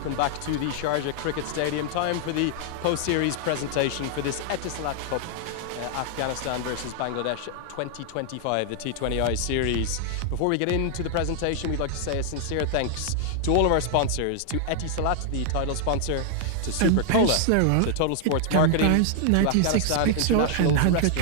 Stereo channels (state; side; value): different; both; correlation 0.00